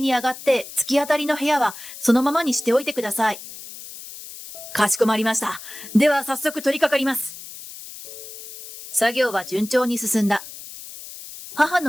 に上がって突き当たりの部屋はそのままにしておいてください。かしこまりました。では早速取り掛かります。作業は順調に進んだ。母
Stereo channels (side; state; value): left; noise; hiss, 14 dB below the sound